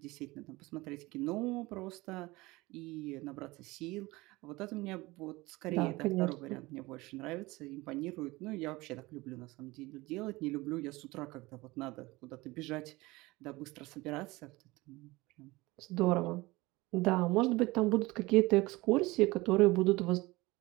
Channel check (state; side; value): quieter; left; 21.4 dB